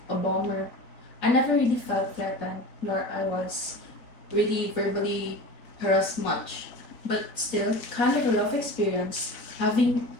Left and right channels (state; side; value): late; right; 3.9 ms